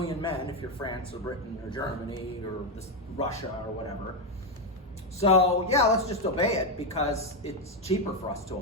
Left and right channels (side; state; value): both; normal; correlation 0.06